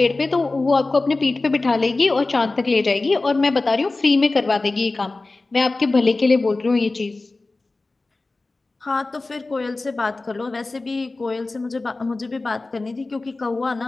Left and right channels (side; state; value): right; quieter; 3.3 dB